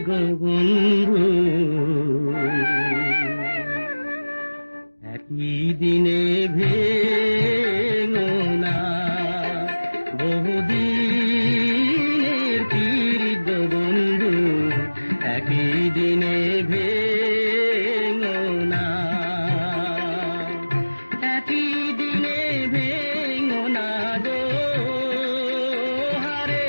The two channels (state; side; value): inverted; both; correlation -1.00